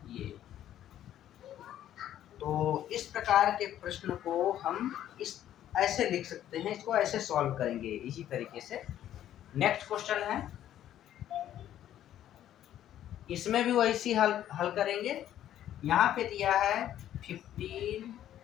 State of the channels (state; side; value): quieter; right; 11.6 dB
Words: ये तो इस प्रकार के प्रश्न को हम ऐसे लिख सकते हैं। इसको ऐसे सॉल्व करेंगे इसी तरीके से। नेक्स्ट क्वेश्चन है, इसमें भी वैसी हल करेंगे। यहाँ पे दिया है 15,